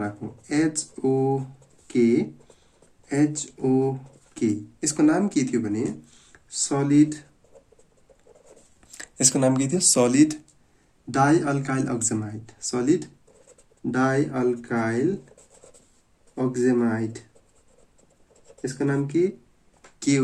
HOK। यसको नाम के थियो भने सलिड, यसको नाम के थियो सलिड डाइअल्काइल अक्जेमाइड, सलिड डाइअल्काइल अक्जेमाइड। यसको नाम के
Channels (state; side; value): identical; both; correlation 1.00